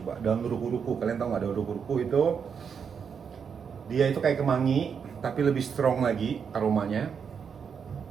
Daun ruku-ruku. Kalian tahu nggak daun ruku-ruku itu? Dia itu kayak kemangi, tapi lebih strong lagi aromanya.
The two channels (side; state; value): left; quieter; 6.7 dB